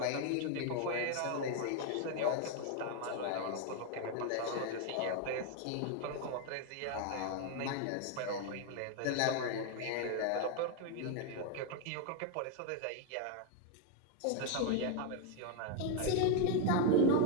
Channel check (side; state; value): both; different; correlation 0.01